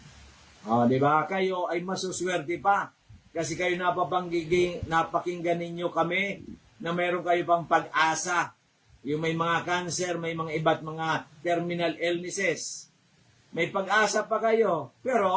Di ba? Kayo ay masuswerte pa. Kasi kayo napakinggan ninyo kami na meron kayo pang pag-asa. Yung may mga cancer, may mga iba't mga terminal illnesses. May pag-asa pa kayo.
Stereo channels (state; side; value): identical; both; correlation 1.00